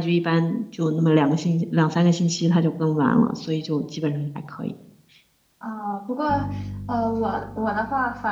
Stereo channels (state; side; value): identical; both; correlation 1.00